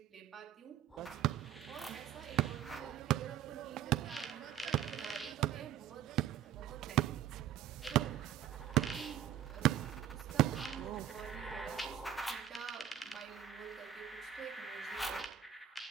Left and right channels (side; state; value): left; quieter; 10.3 dB